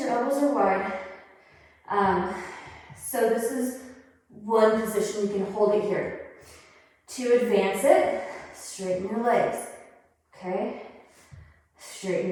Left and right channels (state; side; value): identical; both; correlation 1.00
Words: elbows are wide. So this is one position. You can hold it here. To advance it, straighten your legs. Okay?